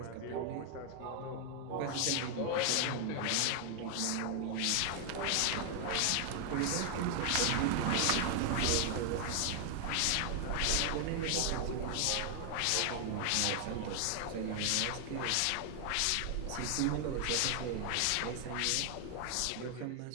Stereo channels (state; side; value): different; both; correlation 0.00